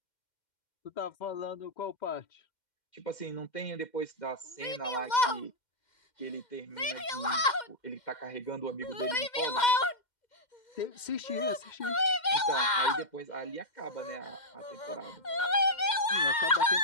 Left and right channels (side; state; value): right; late; 2.1 ms